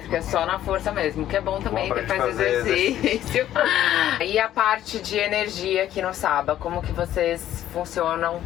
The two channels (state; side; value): quieter; right; 12.2 dB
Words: só na força mesmo, que é bom também, Bom que faz fazer exercício. E a parte de energia aqui no Saba, como que vocês funcionam?